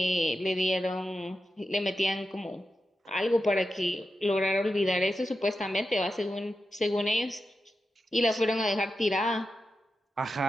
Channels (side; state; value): both; normal; correlation 0.90